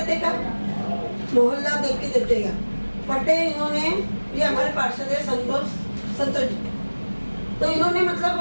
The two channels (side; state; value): both; inverted; correlation -1.00